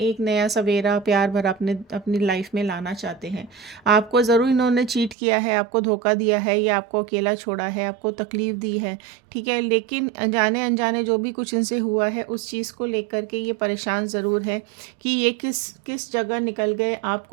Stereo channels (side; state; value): left; drops out; at 5.2 s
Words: नया सवेरा प्यार भरा अपने अपनी लाइफ में लाना चाहते हैं। आपको ज़रूर इन्होंने चीट किया है, आपको धोखा दिया है, या आपको अकेला छोड़ा है, आपको तकलीफ़ दी है। ठीक है, लेकिन अनजाने अनजाने जो भी कुछ इनसे हुआ है उस चीज़ को लेकर के ये परेशान ज़रूर है कि ये किस किस जगह निकल गए,